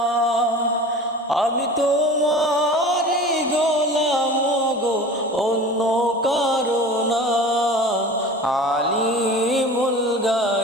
আমি তোমারি গোলাম গো, অন্য কারো না। আলিমুল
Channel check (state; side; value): normal; both; correlation 0.38